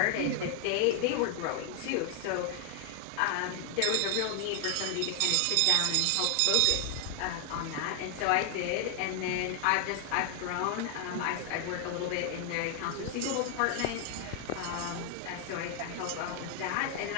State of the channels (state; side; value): different; both; correlation 0.00